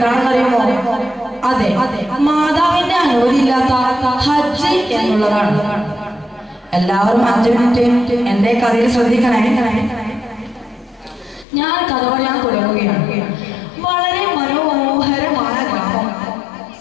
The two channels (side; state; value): right; drops out; at 11.5 s